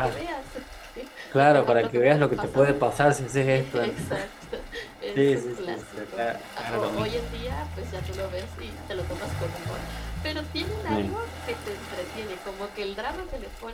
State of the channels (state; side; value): identical; both; correlation 1.00